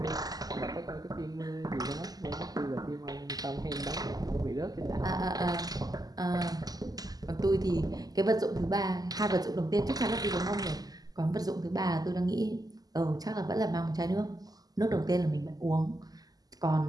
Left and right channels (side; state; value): left; late; 0.18 ms